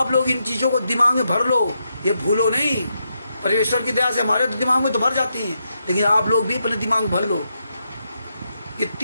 लोग इन चीज़ों को दिमाग में भर लो, ये भूलो नहीं। परमेश्वर की दया से हमारे तो दिमाग में तो भर जाती हैं, लेकिन आप लोग भी अपने दिमाग में भर लो। ये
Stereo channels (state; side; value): inverted; both; correlation -0.82